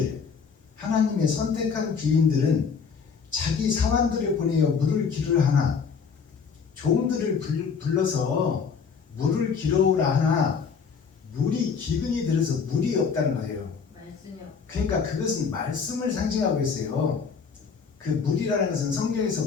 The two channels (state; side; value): quieter; right; 5.9 dB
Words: 하나님의 선택한 귀인들은 자기 사환들을 보내어 물을 기르라 하나, 종들을 불러서 물을 기르라 하나 물이 기근이 들어서 물이 없다는 거예요. 그러니까 그것은 말씀을 상징하고 있어요. 그 물이라는 것은